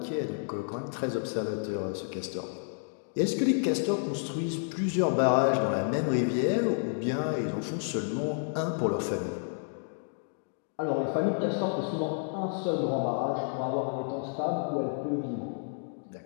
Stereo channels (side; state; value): right; silent; digital silence